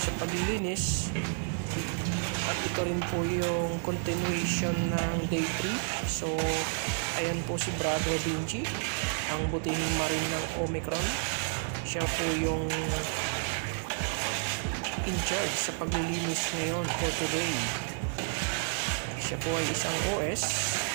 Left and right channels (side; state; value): left; silent; 57 dB below the other